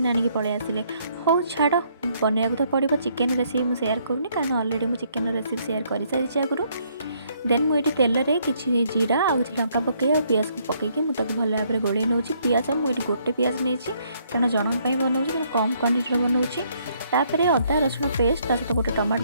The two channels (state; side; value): inverted; both; correlation -0.69